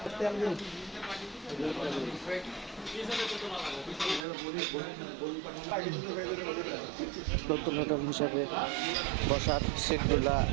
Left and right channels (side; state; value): left; drops out; at 4.2 s